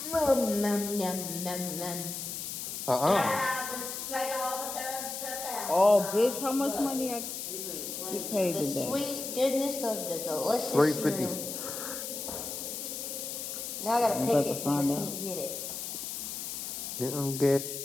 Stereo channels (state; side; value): noise; left; hiss, 6 dB below the sound